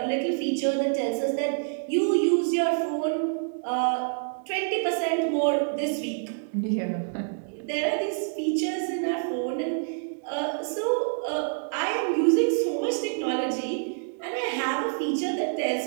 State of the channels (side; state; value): left; silent; digital silence